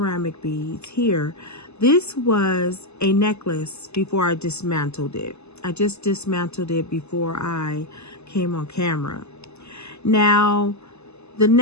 beads here, this was a necklace before I dismantled it. I just dismantled it before I came on camera. Now, the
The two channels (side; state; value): right; late; 0.80 ms